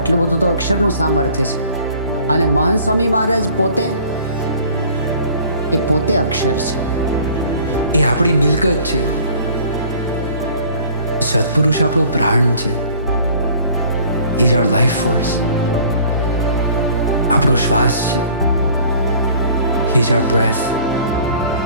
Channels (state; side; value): inverted; both; correlation -0.51